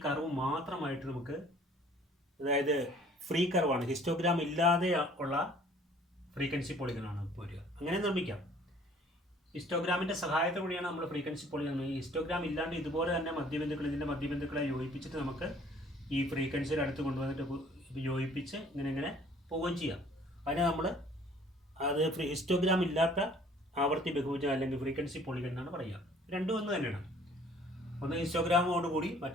കർവ് മാത്രമായിട്ട് നമുക്ക്, അതായത് ഫ്രീ കർവാണ്, ഹിസ്റ്റോഗ്രാം ഇല്ലാതെ ഉള്ള ഫ്രീക്വൻസി പോളിഗണാണ് വരിക. അങ്ങനെ നിർമ്മിക്കാം. ഹിസ്റ്റോഗ്രാമിൻ്റെ സഹായത്തോടെയാണ് നമ്മൾ ഫ്രീക്വൻസി പോളിഗൺ. ഈ ഹിസ്റ്റോഗ്രാം ഇല്ലാണ്ട് ഇതുപോലെ തന്നെ ഇതിൻ്റെ മധ്യബിന്ദുക്കളെ യോജിപ്പിച്ചിട്ട് നമുക്ക് ഈ ഫ്രീക്വൻസിയുടെ അടുത്ത് കൊണ്ടുവന്നിട്ട് യോജിപ്പിച്ച് ഇങ്ങനെ പോവുകയും ചെയ്യാം. അതിനെ നമ്മൾ ഹിസ്റ്റോഗ്രാം ഇല്ലാത്ത ആവർത്തി ബഹുഭുജം അല്ലെങ്കിൽ ഫ്രീക്വൻസി പോളിഗൺ എന്നാണ് പറയുക. രണ്ടും ഒന്ന് തന്നെയാണ്. ഒന്ന് ഹിസ്റ്റോഗ്രാമോട് കൂടി,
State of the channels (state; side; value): normal; both; correlation 0.55